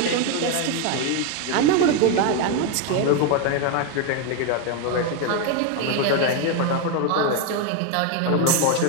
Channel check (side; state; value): both; different; correlation 0.01